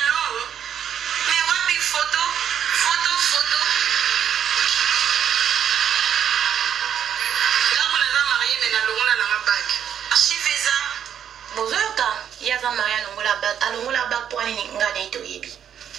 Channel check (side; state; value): left; quieter; 9.1 dB